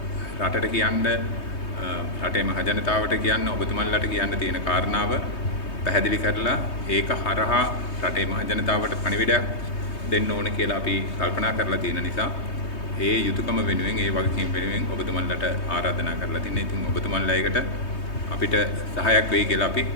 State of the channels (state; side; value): late; right; 3.2 ms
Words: රටට කියන්න රටේ මහජනතාවට කියන්න ඔබතුමන්ලට කියන්න තියෙන කාරණාව පැහැදිලි කරලා ඒක හරහා රටේ මහජනතාවට පණිවිඩයක් දෙන්න ඕන කියලා අපි කල්පනා කරලා තියෙන නිසා ඒ යුතුයකම වෙනුවෙන් ඒ වගකීම් වෙනුවෙන් ඔබතුමන්ලට ආරාධනා කරලා තින්නේ. ඉතින් ඔබතුමන්ලා ඒකට අපිට සහායක් වෙයි කියලා අපි